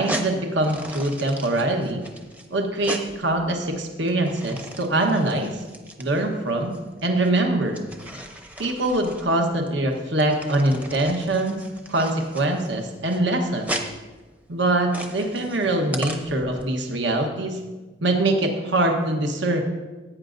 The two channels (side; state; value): both; normal; correlation 0.39